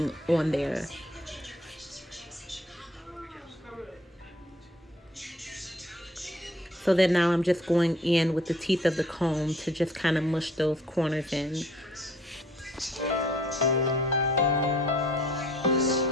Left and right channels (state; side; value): normal; both; correlation 0.58